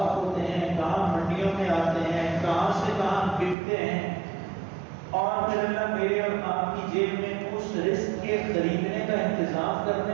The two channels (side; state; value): left; drops out; at 3.6 s